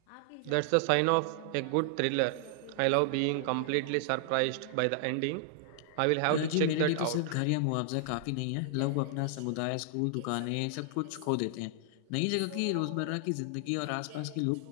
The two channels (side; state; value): both; different; correlation 0.00